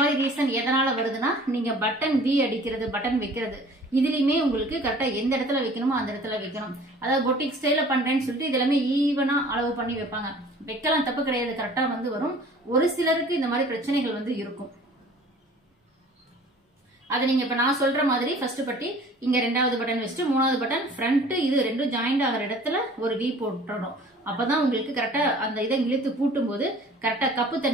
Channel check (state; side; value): normal; both; correlation 0.49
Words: ரீசன் எதனால வருதுன்னா நீங்க பட்டன் வி அடிக்கிறது, பட்டன் வைக்கிறது இதுலயுமே உங்களுக்கு கரெக்டா எந்த இடத்துல வைக்கணுமோ அந்த இடத்துல வைக்கணும். அதாவது பொட்டிக் ஸ்டைல பண்றேன்னு சொல்லிட்டு இது எல்லாமே ஈவனா அளவு பண்ணி வைப்பாங்க. வைக்கலாம், தப்பு கிடையாது, கரெக்டா வந்து வரும். ஒரு சிலருக்கு இந்த மாதிரி பிரச்சனைகள் வந்து இருக்கும். அது நீங்க இப்ப நான் சொல்ற மாதிரி ஃபர்ஸ்ட் பட்டி இங்க ரெண்டாவது பட்டன் வச்சுட்டு மூணாவது பட்டன் ஃப்ரண்ட் இது ரெண்டும் ஜாயிண்ட் ஆகிற இடத்துல ஒரு வி போட்டுறணும். அப்பதான் உங்களுக்கு கரெக்டா அந்த இதை இழுத்து பூட்டும் போது கரெக்டா கப்பு